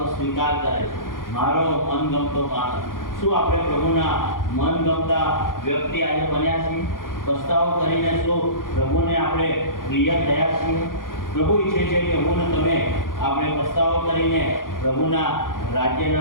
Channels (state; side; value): late; right; 0.90 ms